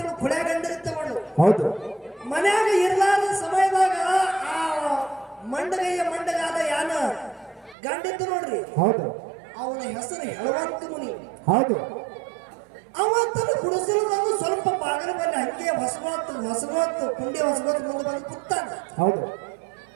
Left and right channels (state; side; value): drops out; left; at 7.8 s